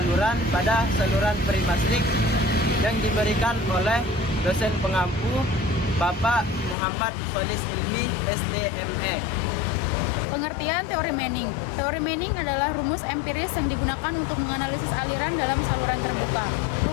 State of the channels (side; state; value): right; drops out; at 6.8 s